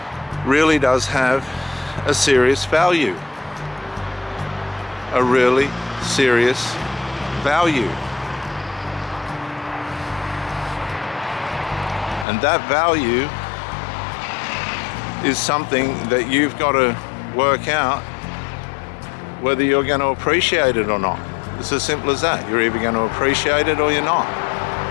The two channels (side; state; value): right; drops out; at 12.2 s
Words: really does have a serious value. A really serious value. And that value is something that you've got to work out whether you're going to appreciate it or not. It's as simple as that. You're either going to appreciate it or you're not.